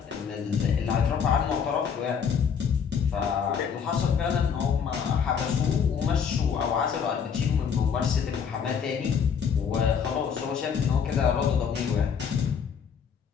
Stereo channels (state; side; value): quieter; right; 6.9 dB